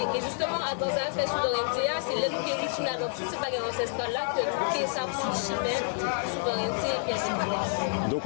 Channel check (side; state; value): right; silent; digital silence